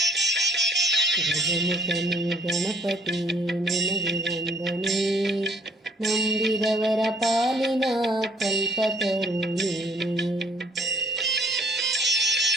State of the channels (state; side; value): normal; both; correlation 0.61